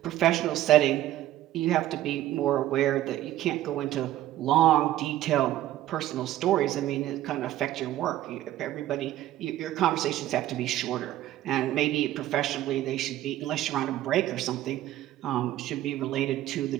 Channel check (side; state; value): left; quieter; 13.9 dB